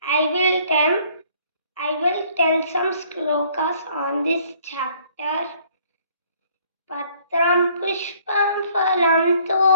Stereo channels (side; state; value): both; inverted; correlation -0.60